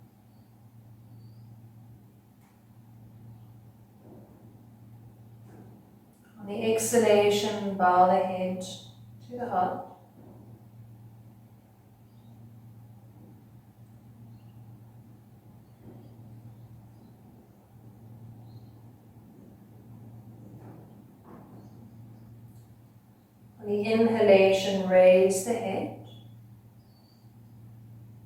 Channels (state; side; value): identical; both; correlation 1.00